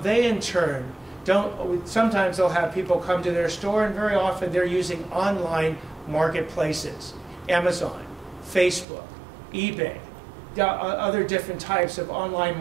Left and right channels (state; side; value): drops out; left; at 8.8 s